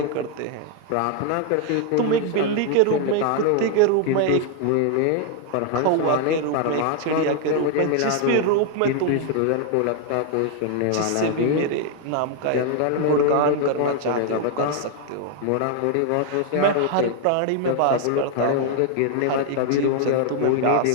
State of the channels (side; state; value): both; different; correlation 0.00